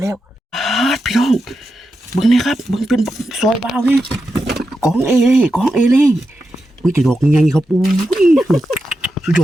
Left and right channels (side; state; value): both; normal; correlation 0.88